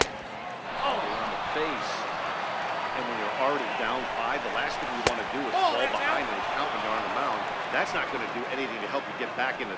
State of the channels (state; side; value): identical; both; correlation 1.00